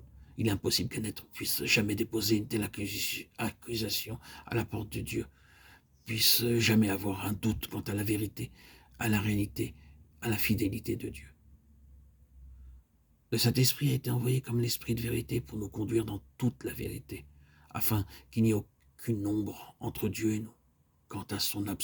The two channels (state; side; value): identical; both; correlation 1.00